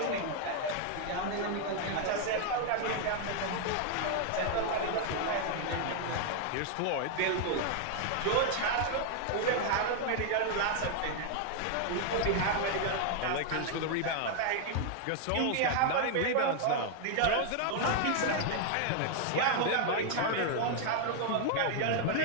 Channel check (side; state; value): both; different; correlation 0.00